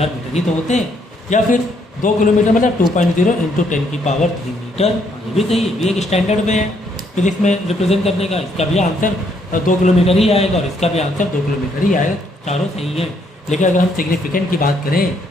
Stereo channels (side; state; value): both; normal; correlation 0.71